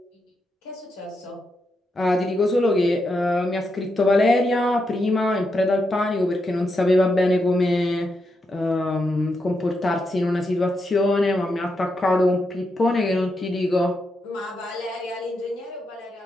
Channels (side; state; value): both; normal; correlation 0.84